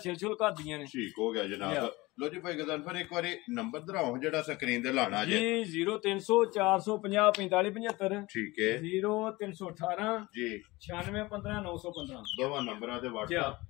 ਕਰਦੀਆਂ ਨੇ। ਠੀਕ ਹੋ ਗਿਆ ਜਨਾਬ। ਲੋ ਜੀ ਭਾਈ ਗਦਨਫਰ ਇੱਕ ਵਾਰੀ ਨੰਬਰ ਦਰਾਓ ਜਿਹੜਾ ਸਕਰੀਨ ਤੇ ਲਾਣਾ ਜੀ 0300 450 45 75 ਠੀਕ ਹੈ 0318 ਜੀ 9615 915 ਦੋਵਾਂ ਨੰਬਰਾਂ ਦੇ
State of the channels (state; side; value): quieter; right; 21.4 dB